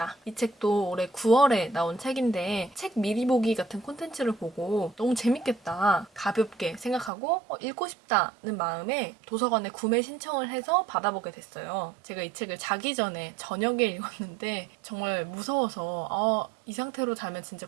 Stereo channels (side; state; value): left; drops out; at 7.1 s